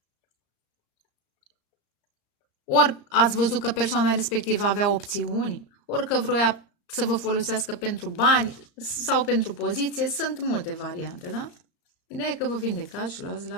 Ori ați văzut că persoana respectivă avea opțiuni, ori că vroia să vă folosească pentru bani sau pentru poziție. Sunt multe variante, da? Ideea e că vă vindecați și luați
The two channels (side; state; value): right; late; 34 ms